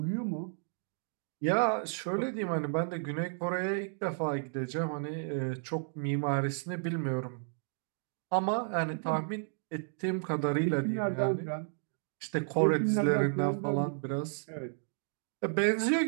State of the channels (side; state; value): left; silent; 56 dB below the other